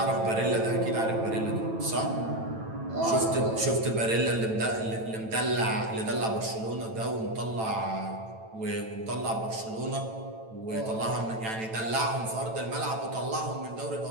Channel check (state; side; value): late; left; 9.0 ms